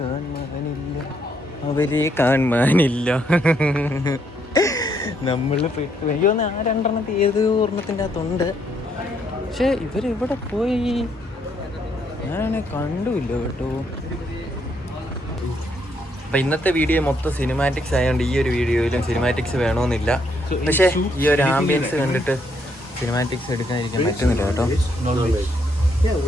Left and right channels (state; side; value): normal; both; correlation 0.73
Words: അവരെ കാണാനില്ല. നമ്മൾ പെട്ടു. എനിക്ക് തോന്നുന്നു ആ 2 ഏത് ഒരെണ്ണത്തിൻ്റെ അകത്തുണ്ട്, പക്ഷെ ഇവരിവിടെ പോയി ഞാനാണെ കണ്ടുമില്ല കേട്ടോ. അപ്പം ഇന്നത്തെ വീഡിയോ മൊത്തം സിനിമാറ്റിക്സ് ആയതുകൊണ്ട് ഈ ഒരു വീഡിയോയിലും സിനിമാറ്റിക്സ് വേണമെന്നില്ല. പക്ഷേ ഈ ഒരു ആംബിയൻസ് കണ്ടിട്ട് സിനിമാറ്റിക്സ് എടുക്കാതിരിക്കാൻ പറ്റുന്നില്ല കേട്ടോ.